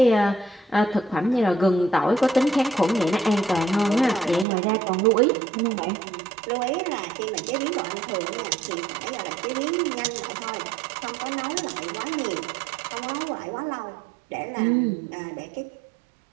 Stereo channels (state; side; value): drops out; left; at 4.5 s